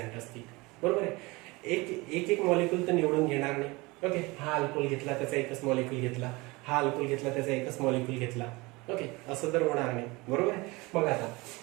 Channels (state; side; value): quieter; left; 23.7 dB